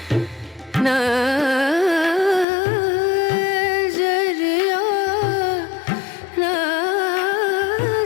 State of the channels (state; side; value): drops out; right; at 2.5 s